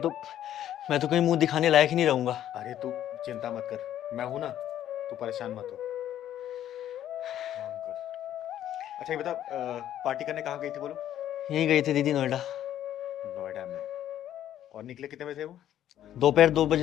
मैं तो कहीं मुंह दिखाने लायक ही नहीं रहूंगा। अरे तू चिंता मत कर, मैं हूं ना, तू परेशान मत हो। काम कर। अच्छा ये बता, पार्टी करने कहाँ गई थी बोलो? यहीं गए थे दीदी, नोएडा। नोएडा में? और निकले कितने बजे थे वो? दोपहर 2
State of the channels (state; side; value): quieter; right; 11.5 dB